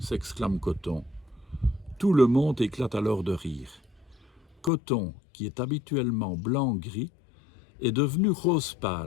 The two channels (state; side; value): drops out; right; at 4.7 s